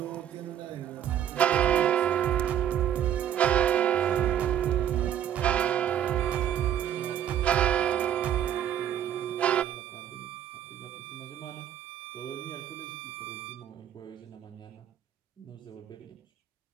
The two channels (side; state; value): left; quieter; 10.3 dB